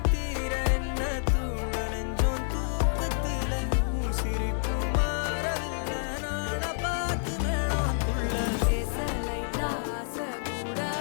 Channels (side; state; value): right; silent; 59 dB below the other